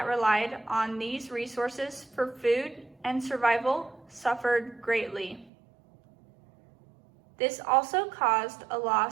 relied on these resources for food and survival suffered greatly. This also caused a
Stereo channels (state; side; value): drops out; left; at 5.5 s